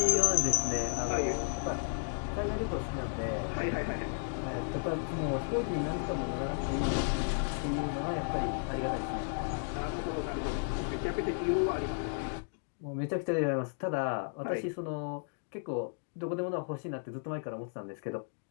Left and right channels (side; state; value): right; silent; digital silence